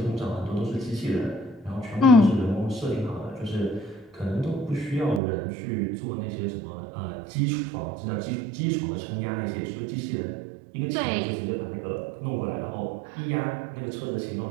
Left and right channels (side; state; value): left; drops out; at 5.2 s